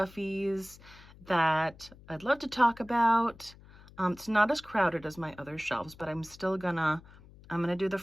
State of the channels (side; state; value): left; noise; hum, 22 dB below the sound